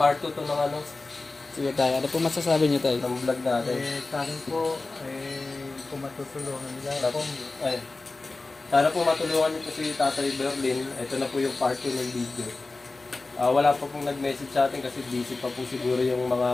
2 to ng ano, Sige tayo, ano po masasabi niyo tayo? ng vlog natin. Sa akin po, kung matutulungan nila ako, Ay, sana po matulungan niyo po si Tatay Berlin. Ito na po yung part 2 ng video. Wala pa pong nag-message sa atin kasi busy pa po siguro yung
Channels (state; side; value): quieter; right; 3.4 dB